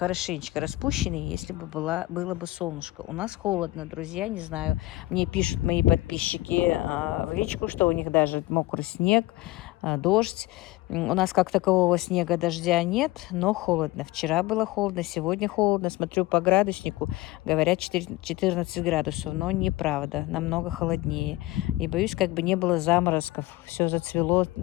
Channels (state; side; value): quieter; right; 18.7 dB